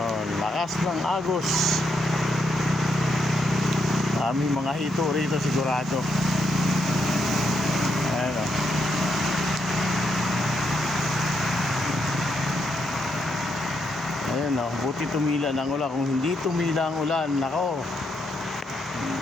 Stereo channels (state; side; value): normal; both; correlation 0.79